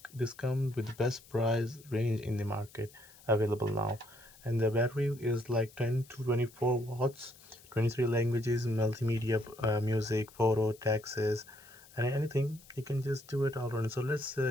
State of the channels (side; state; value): left; noise; hiss, 23 dB below the sound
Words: with the best price range in the market available now. And the battery is like 10 to 24 watts, 23 languages, multimedia, music, photo, taxes, and anything. You can just do it all around. So let's